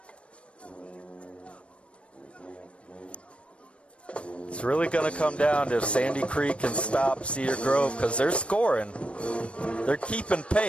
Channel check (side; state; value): right; late; 0.060 ms